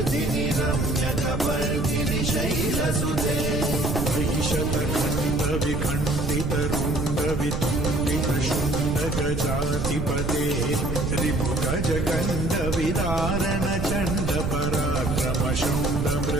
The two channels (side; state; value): right; noise; rumble, 2 dB below the sound